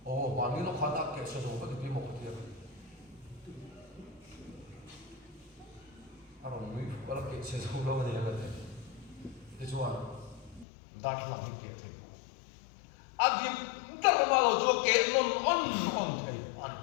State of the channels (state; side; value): drops out; right; at 10.7 s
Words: ba ni lo kha ta ke che zo ba ki mo ka ti Aron mi wala ke se zo lo ni la te te chuan dar lang ni ke the adim dar ma lo jo ke non on thei ani